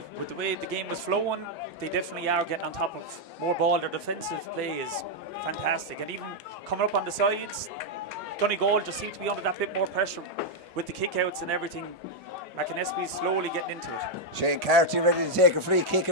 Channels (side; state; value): both; normal; correlation -0.01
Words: With the way the game was flowing, they definitely are getting on top of more ball. Their defensive play is fantastic. And even coming up on the sides, Donegal just seemed to be under that bit more pressure with the kickouts and everything. McAnespies slowly getting into it. Shane Carty ready to take a free kick